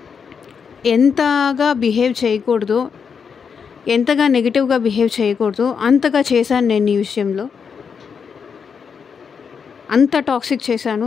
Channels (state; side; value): quieter; right; 6.4 dB